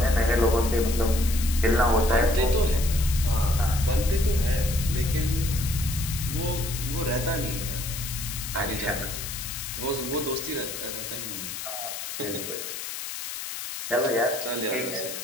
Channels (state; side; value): noise; left; hiss, 7 dB below the sound